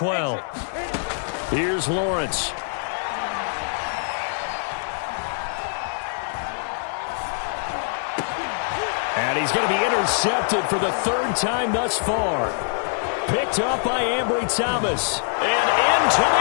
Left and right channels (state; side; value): silent; right; digital silence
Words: Here's Lawrence. And he's going to be intercepted for the third time thus far. Picked up by Ambry Thomas. And into